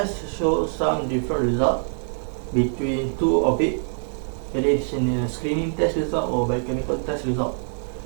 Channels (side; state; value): left; silent; digital silence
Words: shows some different results between 2 of it. That is in a screening test result or biochemical test result.